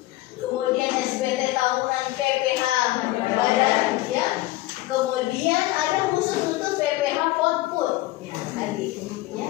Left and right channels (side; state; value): right; quieter; 17.9 dB